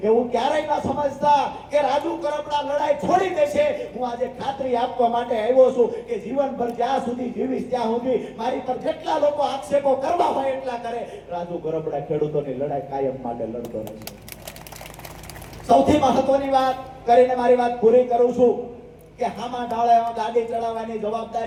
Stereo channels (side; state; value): both; identical; correlation 1.00